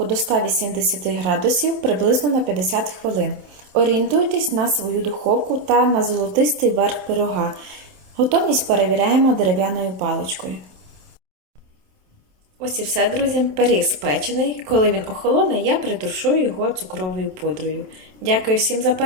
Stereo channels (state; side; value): late; left; 27 ms